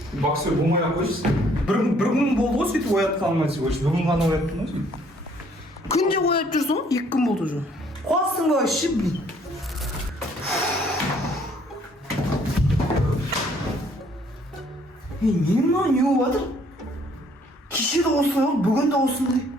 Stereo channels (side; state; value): both; normal; correlation 0.62